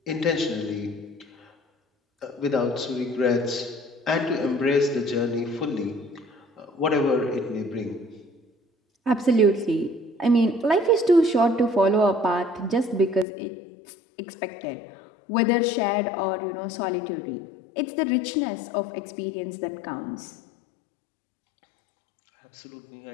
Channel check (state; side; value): drops out; right; at 13.2 s